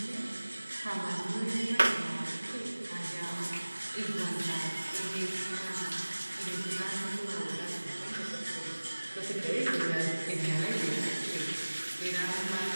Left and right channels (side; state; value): both; inverted; correlation -1.00